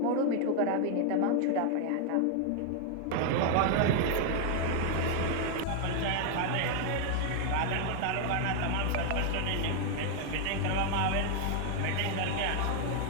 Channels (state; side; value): different; both; correlation 0.00